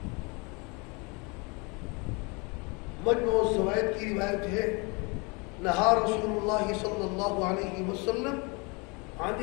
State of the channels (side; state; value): right; quieter; 29.8 dB